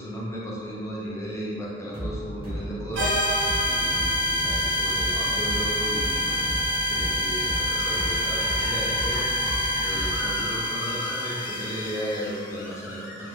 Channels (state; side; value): normal; both; correlation -0.02